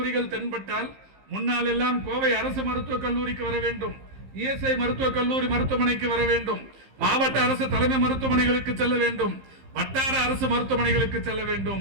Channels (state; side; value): late; left; 15 ms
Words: தென்பட்டால் முன்னால் எல்லாம் கோவை அரசு மருத்துவக் கல்லூரிக்கு வர வேண்டும், இஎஸ்ஐ மருத்துவக் கல்லூரி மருத்துவமனைக்கு வர வேண்டும், மாவட்ட அரசு தலைமை மருத்துவமனைகளுக்கு செல்ல வேண்டும், வட்டார அரசு மருத்துவமனைகளுக்கு செல்ல